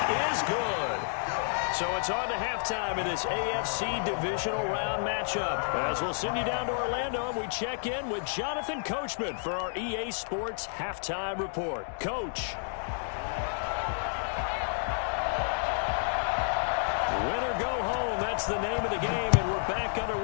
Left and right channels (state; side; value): silent; right; digital silence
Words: is good. So it's on to halftime in this AFC divisional round matchup. As we'll send you down to Orlando, and we check in with Jonathan Coachman for our EA Sports Halftime Report. Coach. Win or go home, that's the name of the game, and we're back